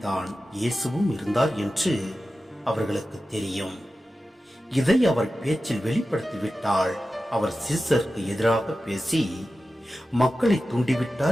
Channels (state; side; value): normal; both; correlation 0.94